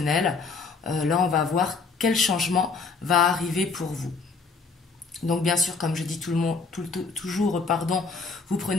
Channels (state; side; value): quieter; right; 4.5 dB